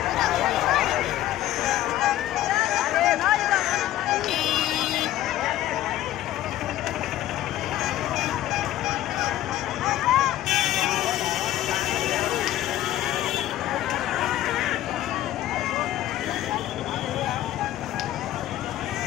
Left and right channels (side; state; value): right; quieter; 13.7 dB